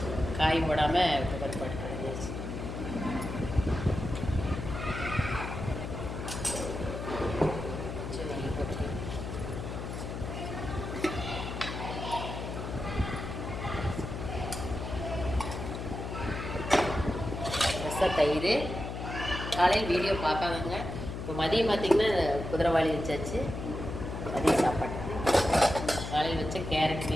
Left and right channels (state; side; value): noise; left; hum, 6 dB below the sound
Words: காய் போடாமல் துவரம் பருப்பு கிடைஞ்சிருச்சு. தயிர். காலையில் வீடியோ பார்க்காதங்க. இப்போ மதியம் பார்த்திங்கன்னா குதிரைவாளி வச்சாச்சு. மதியம் சாப்பாட்டுக்கு காலையில் வச்ச கேரட்